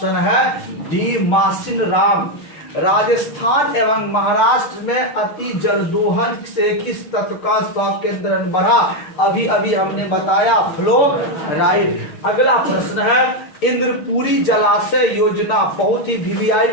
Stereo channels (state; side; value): late; right; 6.5 ms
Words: है डी मासिनराम। राजस्थान एवं महाराष्ट्र में अति जल दोहन से किस तत्व का संकेंद्रण बढ़ा? अभी अभी हमने बताया फ्लोराइड। अगला प्रश्न है, इंद्रपुरी जलाशय योजना बहुत ही वीवीआई